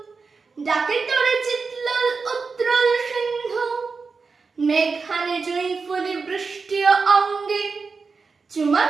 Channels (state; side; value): quieter; left; 4.7 dB